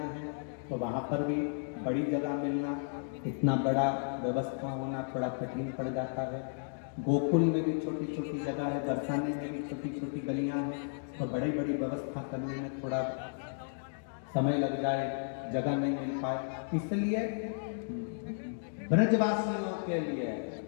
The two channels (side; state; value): right; silent; digital silence